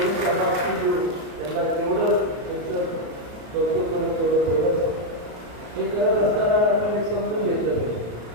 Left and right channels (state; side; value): late; left; 34 ms